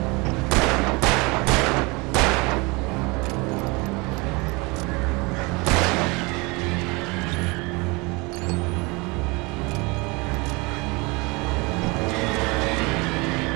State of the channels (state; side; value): quieter; left; 26.5 dB